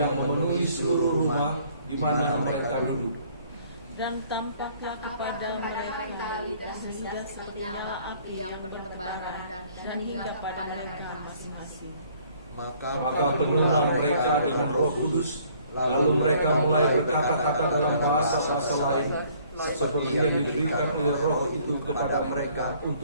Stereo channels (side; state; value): both; inverted; correlation -0.60